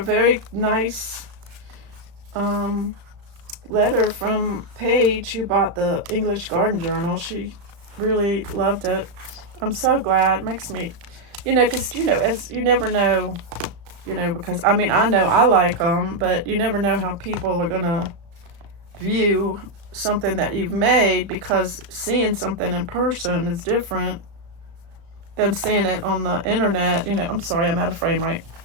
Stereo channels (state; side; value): late; left; 35 ms